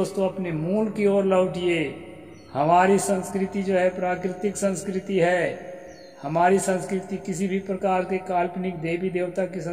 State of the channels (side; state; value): both; identical; correlation 1.00